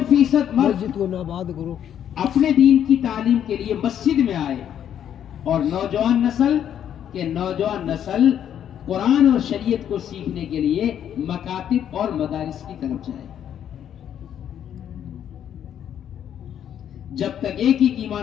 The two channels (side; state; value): right; quieter; 9.7 dB